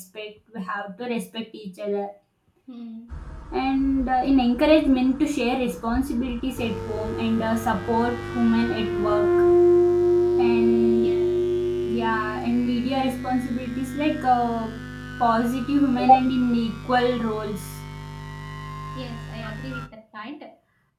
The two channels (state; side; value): identical; both; correlation 1.00